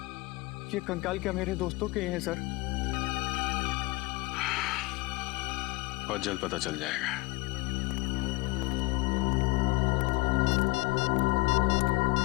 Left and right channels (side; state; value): right; quieter; 22.9 dB